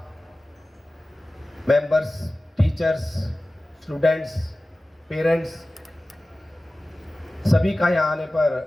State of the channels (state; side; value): normal; both; correlation 0.96